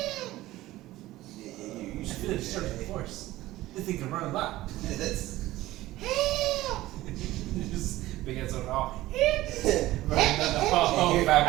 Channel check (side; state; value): left; quieter; 16.7 dB